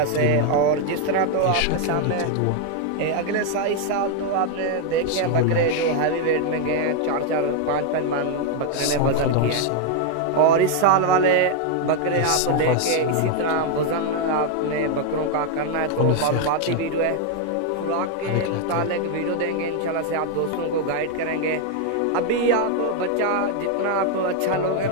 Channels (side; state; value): both; different; correlation 0.01